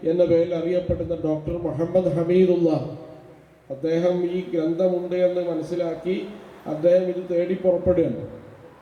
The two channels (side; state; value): both; identical; correlation 1.00